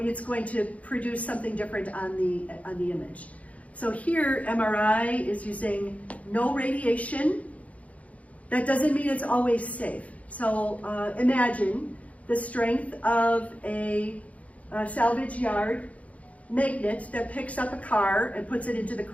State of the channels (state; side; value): late; right; 0.067 ms